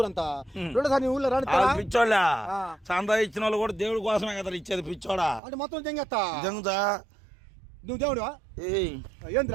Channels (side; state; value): left; drops out; at 5.4 s